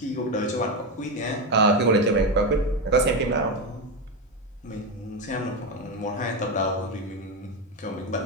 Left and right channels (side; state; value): both; normal; correlation 0.12